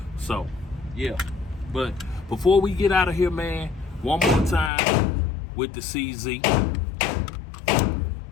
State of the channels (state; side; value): drops out; right; at 4.7 s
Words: So, yeah. But before we get out of here, man, one more time with the CZ. I'm